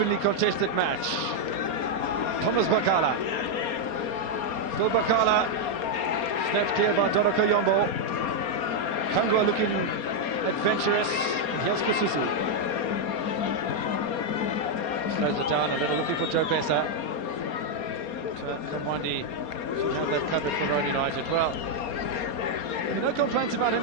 contested match. Thomas Bakala. Still Bakala. Snapped clear by Doroko Yombo. Kangwa looking adventurous. And here's Kasusu. Slows it down a little, looking for Joe Besa. Kamwandi should have that covered for Roan United. Well, no complaints about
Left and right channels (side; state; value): right; late; 4.3 ms